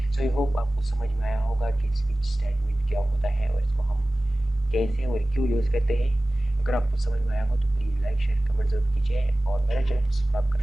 सो आई होप आपको समझ में आया होगा कि स्विच स्टेटमेंट क्या होता है और इसको हम कैसे और क्यों यूज़ करते हैं। अगर आपको समझ में आया हो तो प्लीज़ लाइक शेयर कमेंट जरूर कीजिए और मेरे चैनल को सब्सक्राइब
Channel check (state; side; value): normal; both; correlation 0.97